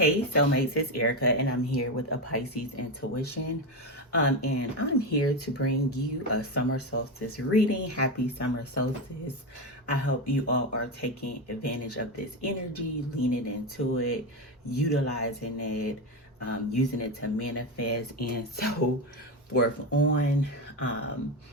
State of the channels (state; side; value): normal; both; correlation 0.14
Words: soulmates, it's Erika, and I'm here with a Pisces intuition. And I'm here to bring you a summer solstice reading. Happy summer solstice. I hope you all are taking advantage of this energy, leaning into it, utilizing it, using it to manifest, and so forth on.